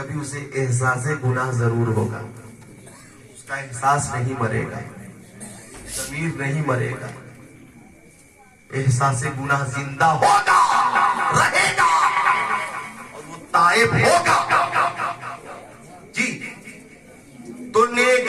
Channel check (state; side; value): identical; both; correlation 1.00